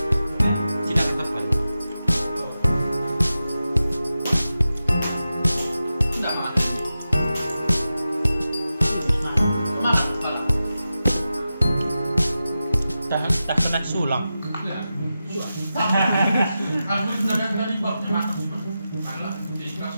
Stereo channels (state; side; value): inverted; both; correlation -0.92